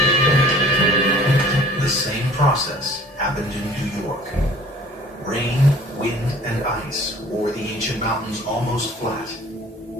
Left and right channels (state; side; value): normal; both; correlation 0.50